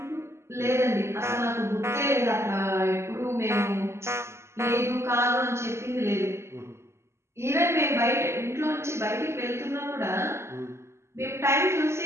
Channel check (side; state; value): left; late; 0.13 ms